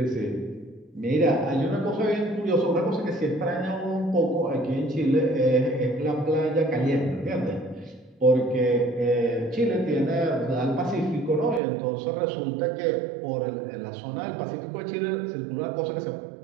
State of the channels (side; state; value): left; drops out; at 11.6 s